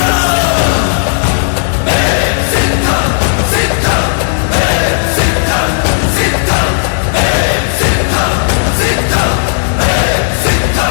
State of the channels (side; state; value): right; silent; digital silence